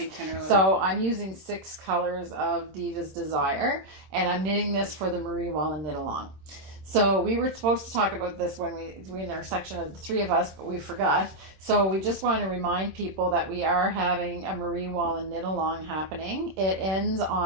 10 or 11. So I'm using 6 colors of Diva's Desire, and I'm knitting this for the Marie Wallin knit along. So we were supposed to talk about this when we in our section of the 3 of us, but we forgot. So we just want to remind people that we are having a Marie Wallin knit along happening. It ends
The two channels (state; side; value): late; left; 26 ms